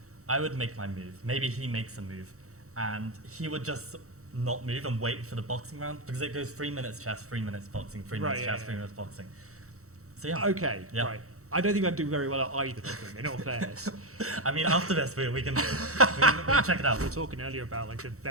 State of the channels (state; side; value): late; left; 0.64 ms